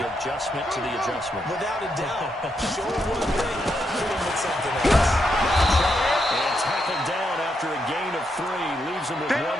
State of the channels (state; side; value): normal; both; correlation 0.81